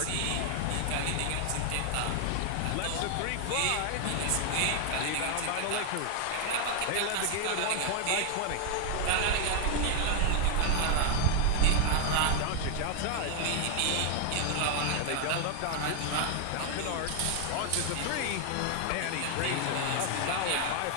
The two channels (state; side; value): different; both; correlation 0.00